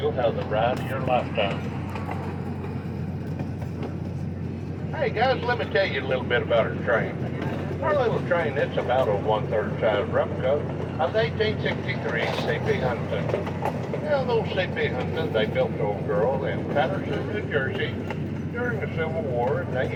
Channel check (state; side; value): identical; both; correlation 1.00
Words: have the ride of your lifetime. Hey guys, let me tell you a little bit about our train. Our little train, it's about a 1/3 size replica of the 1863 C.P. Huntington. Now, those C.P. Huntington, they built the old girl in Patterson, New Jersey during the Civil War, and they